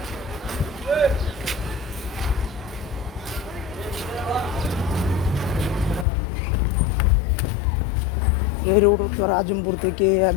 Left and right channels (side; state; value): right; drops out; at 6.1 s